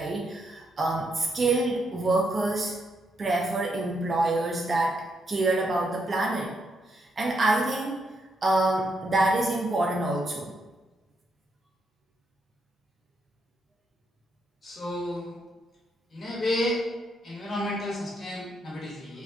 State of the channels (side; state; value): both; normal; correlation 0.79